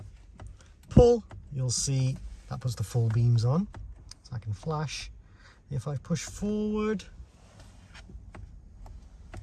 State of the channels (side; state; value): both; identical; correlation 1.00